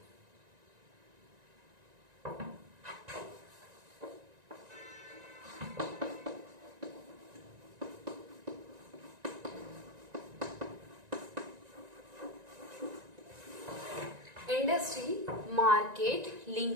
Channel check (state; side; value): late; left; 1.9 ms